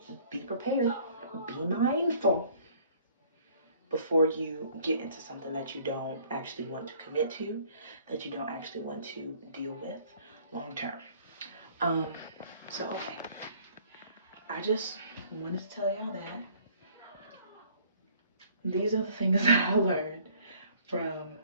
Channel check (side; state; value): both; inverted; correlation -0.57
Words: prepared. Be mindful. before you get into something that you don't actually want to commit to, that you don't actually want to deal with long term. So okay, I just wanted to tell y'all that these are the things that I learned from